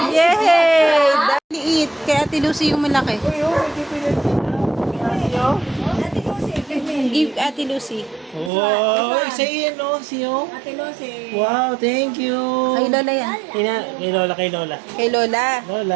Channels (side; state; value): left; drops out; at 8.5 s